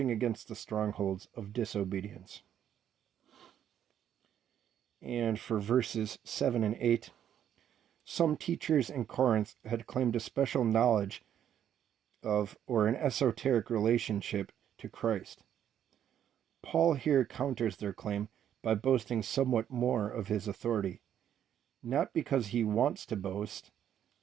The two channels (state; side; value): quieter; left; 10.0 dB